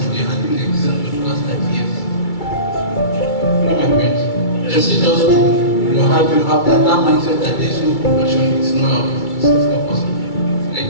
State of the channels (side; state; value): right; late; 2.3 ms